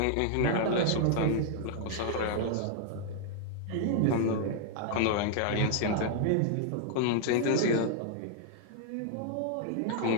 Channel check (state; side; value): different; both; correlation 0.00